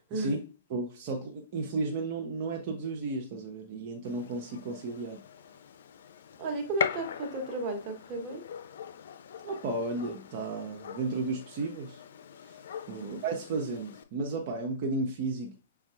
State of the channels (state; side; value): inverted; both; correlation -0.35